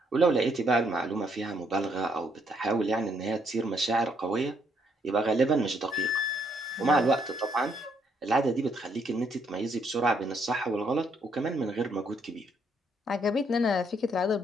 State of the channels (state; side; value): normal; both; correlation 0.72